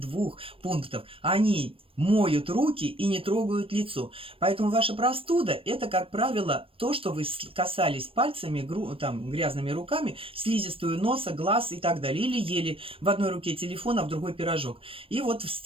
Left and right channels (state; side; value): late; left; 0.26 ms